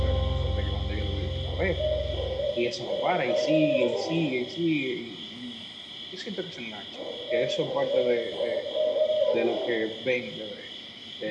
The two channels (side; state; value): both; identical; correlation 1.00